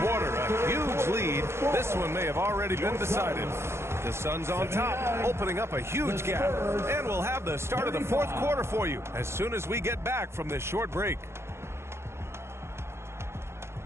a huge lead. This one may have already been decided. The Suns on top, opening up a huge gap. And we'll have the start of the fourth quarter for you as soon as we get back from this short break.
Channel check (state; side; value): late; left; 0.13 ms